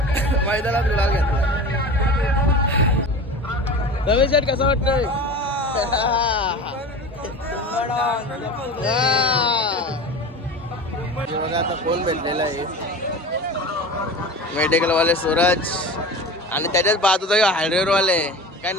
मैदानात गुलाल घेतला रमेश शेठ कसं वाटतंय बघा आता कोण भेटलेला आहे मेडिकल वाले सूरज आणि त्याच्याच बाजूचा हायड्रोर वाले काय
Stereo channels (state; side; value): normal; both; correlation 0.33